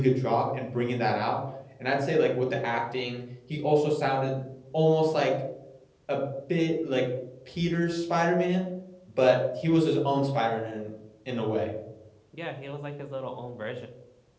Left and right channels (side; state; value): both; identical; correlation 1.00